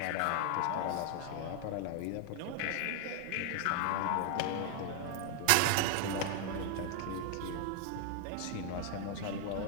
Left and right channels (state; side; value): different; both; correlation 0.00